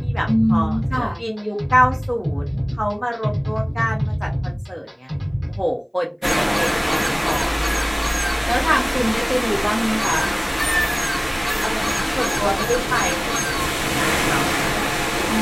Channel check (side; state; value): both; identical; correlation 1.00